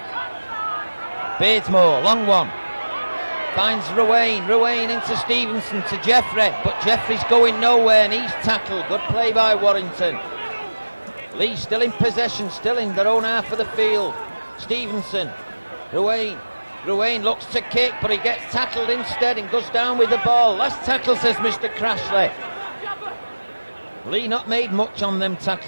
Beardmore, long one. Finds Ruane into Stevenson to Jeffrey, but Jeffrey's going nowhere and he's tackled. Good play by Warrington. Leigh still in possession, still in their own half of the field. Stevenson, Ruane looks to kick, but he gets tackled instead and goes down with the ball. Last tackle, says Mr. Crashley. Leigh not made much on them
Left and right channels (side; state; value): both; inverted; correlation -1.00